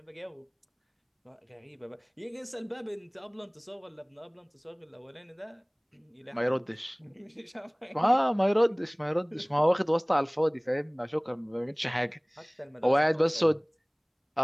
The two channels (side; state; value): both; identical; correlation 1.00